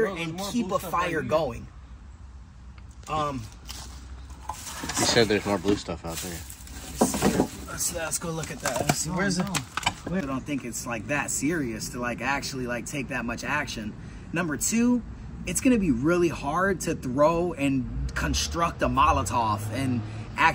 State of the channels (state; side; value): identical; both; correlation 1.00